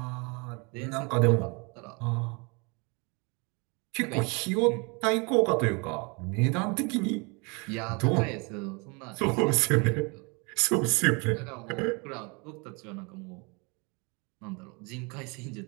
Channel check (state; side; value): quieter; left; 30.7 dB